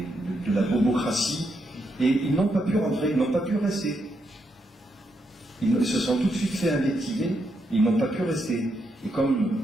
de la bobocratie, et ils n'ont pas pu rentrer, ils n'ont pas pu rester. Ils se sont tout de suite fait invectiver, ils n'ont pas pu rester. Et comme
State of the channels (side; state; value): both; normal; correlation 0.80